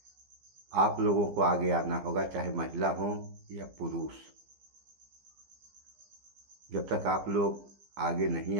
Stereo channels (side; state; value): left; late; 15 ms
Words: आप लोगों को आगे आना होगा, चाहे महिला हो या पुरुष। जब तक आप लोग आगे नहीं